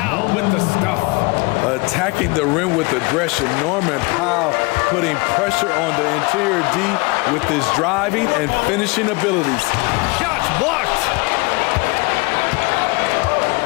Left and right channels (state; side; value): quieter; right; 27.0 dB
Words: with the stuff. Attacking the rim with aggression. Norman Powell putting pressure on the interior D with his driving and finishing abilities. Shots blocked.